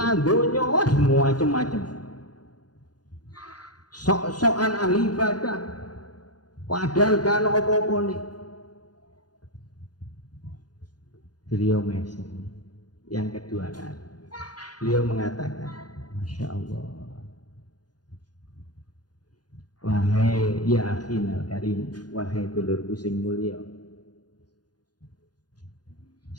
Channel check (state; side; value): late; right; 0.69 ms